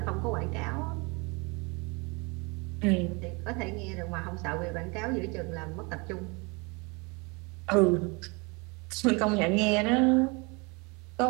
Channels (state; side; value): quieter; left; 29.2 dB